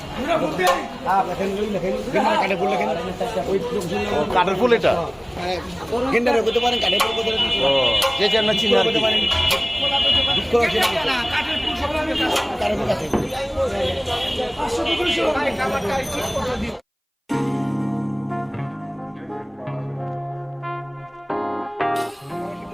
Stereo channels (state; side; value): identical; both; correlation 1.00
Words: কাঠের ফুল, এটা যে যেন চিনি আর কি।